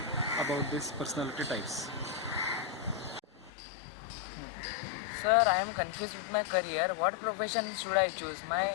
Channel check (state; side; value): drops out; right; at 3.5 s